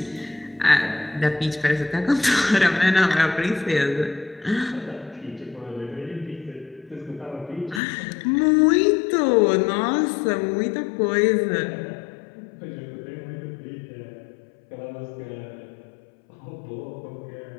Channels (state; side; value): drops out; right; at 7.8 s